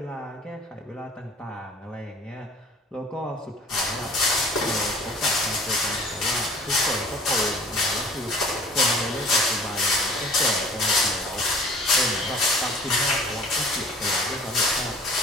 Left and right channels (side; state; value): both; normal; correlation 0.48